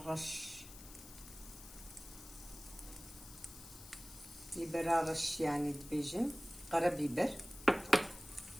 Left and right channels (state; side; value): noise; left; hiss, 16 dB below the sound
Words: رش بيبر رش يعني دبيجن قرا بيبر